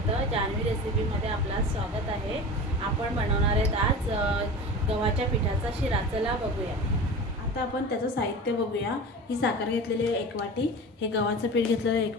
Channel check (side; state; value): both; normal; correlation 0.33